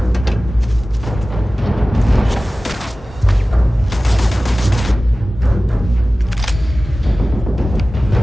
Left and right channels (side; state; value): both; normal; correlation 0.96